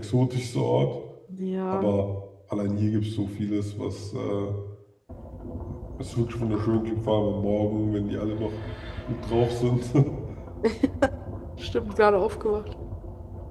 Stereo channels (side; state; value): both; identical; correlation 1.00